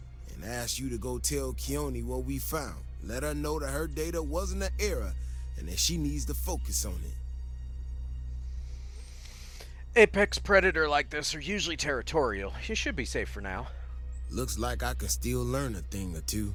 and ask you to go tell Keone what we found. Let her know that her data wasn't an error and that she needs to focus on it. Apex predator like this are usually territorial. You should be safe for now. Looks like I can still learn a thing or two.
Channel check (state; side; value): identical; both; correlation 1.00